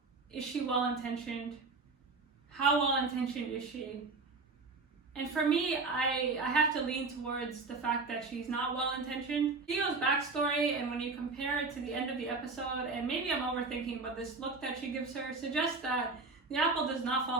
Is she well-intentioned? How well-intentioned is she? And for me, I have to lean towards the fact that she's not well-intentioned. Theo's backstory, and when you compare it to the end of the episode, and maybe I'm overthinking, but this look that she gives her suggests that the apple does not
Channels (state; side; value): quieter; left; 3.9 dB